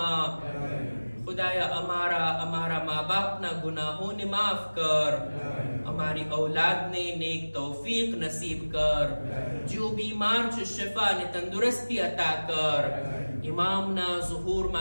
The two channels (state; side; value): inverted; both; correlation -1.00